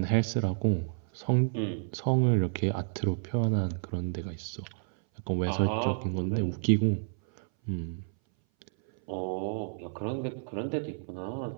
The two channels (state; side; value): silent; left; 58 dB below the other